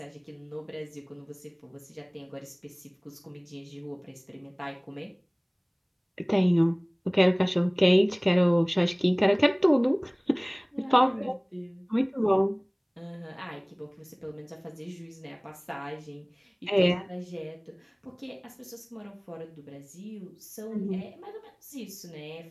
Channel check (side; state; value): both; identical; correlation 1.00